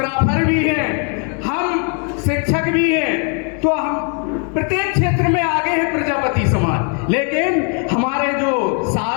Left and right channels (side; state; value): right; quieter; 39.8 dB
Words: भी हैं, हम शिक्षक भी हैं, तो हम प्रत्येक क्षेत्र में आगे है प्रजापति समाज। लेकिन हमारे जो